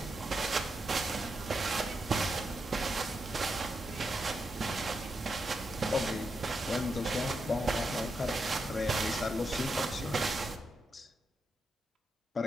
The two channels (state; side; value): normal; both; correlation 0.85